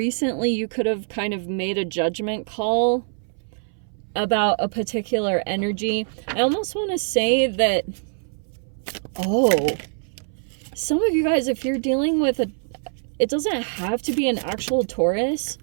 you could have kind of made a judgment call about a particular energy. I almost want to say that, some of you guys, if you're dealing with it doesn't have to be an actual Taurus.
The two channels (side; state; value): left; silent; 60 dB below the other